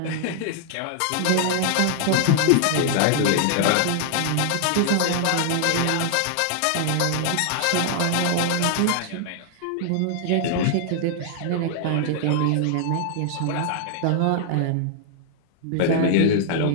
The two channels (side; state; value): both; different; correlation 0.00